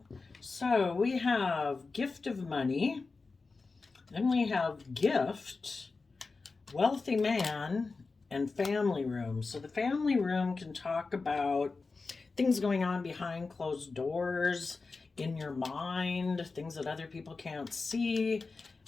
So we have Gift of Money, then we have Gift, Wealthy Man, and Family Room. So the family room can talk about things going on behind closed doors, in your mind, things that other people can't see,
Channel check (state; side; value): quieter; right; 4.1 dB